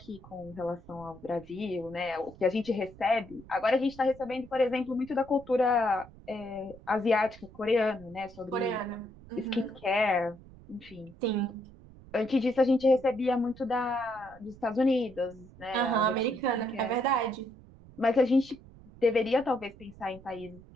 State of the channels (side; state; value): right; noise; rumble, 21 dB below the sound